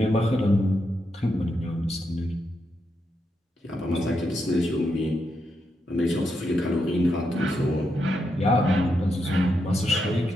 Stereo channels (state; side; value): normal; both; correlation 0.83